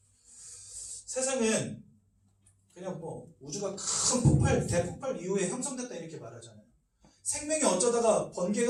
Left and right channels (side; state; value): both; identical; correlation 1.00